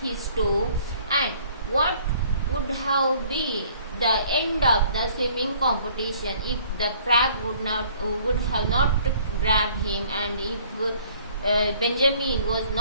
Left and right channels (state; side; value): inverted; both; correlation -0.57